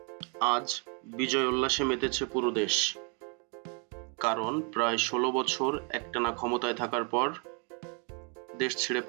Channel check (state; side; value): quieter; left; 36.8 dB